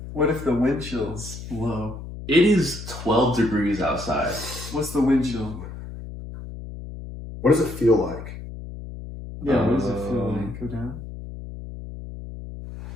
What if the wind chill's low? It is 12 degrees outside. What's the wind chill? What does it feel like? Yeah, what does it feel like? Go down?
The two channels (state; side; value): noise; left; hum, 11 dB below the sound